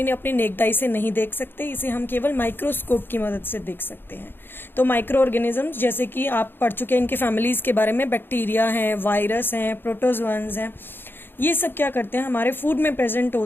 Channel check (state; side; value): late; right; 0.10 ms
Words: अपनी नेकदाई से नहीं देख सकते, इसे हम केवल माइक्रोस्कोप की मदद से देख सकते हैं. तो माइक्रो ऑर्गेनिजम्स, जैसे कि आप पढ़ चुके हैं इनके फैमिलीज़ के बारे में, बैक्टीरिया हैं, वायरस हैं, प्रोटोजोअन्स हैं, ये सब क्या करते हैं? हमारे फूड में प्रेजेंट